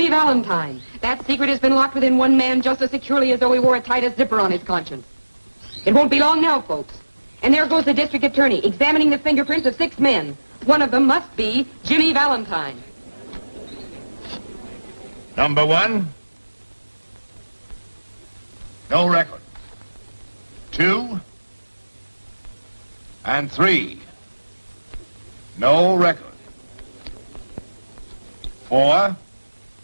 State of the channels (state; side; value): inverted; both; correlation -1.00